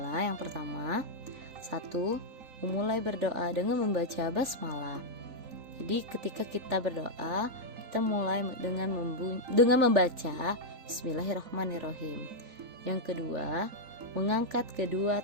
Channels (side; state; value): left; late; 3.9 ms